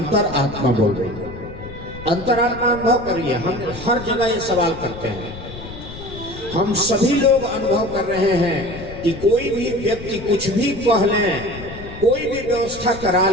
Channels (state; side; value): noise; left; rumble, 13 dB below the sound